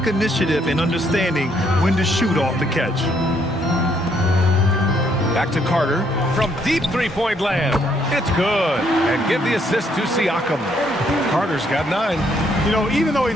initiative in understanding when to shoot off the catch. Back to Carter from deep three-point land. It's good. And give the assist to Siakam. Carter's got 9. You know, even though he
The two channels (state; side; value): normal; both; correlation 0.70